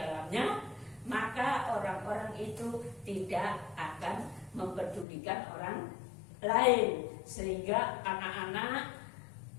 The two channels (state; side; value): drops out; right; at 5.1 s